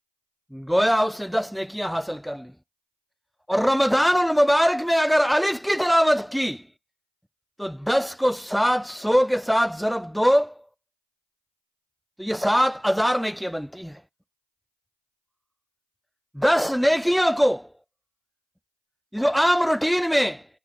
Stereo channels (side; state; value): both; identical; correlation 1.00